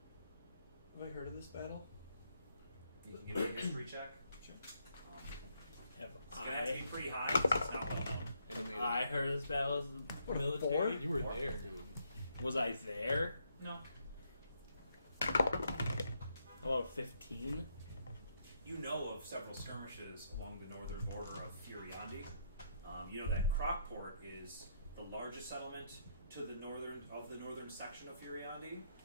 Have I heard of this battle? You can give me a history check. Sure. Have It's gonna have to I? be pretty high because it's not well known. Animated. I heard this battle as a military. You were there, dude. Was I there? No. How about 15? You know of several skirmishes along the northern border of Furiandi. You know that Crockport is the largest settlement to the northern section of Furiandi,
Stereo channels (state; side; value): inverted; both; correlation -0.75